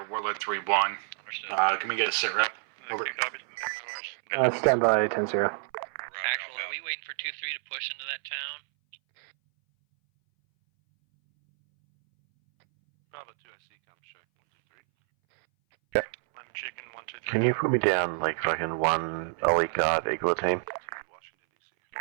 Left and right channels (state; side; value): silent; left; 59 dB below the other